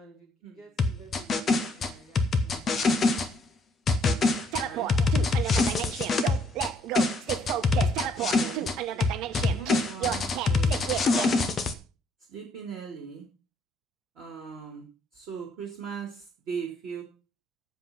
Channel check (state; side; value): normal; both; correlation 0.68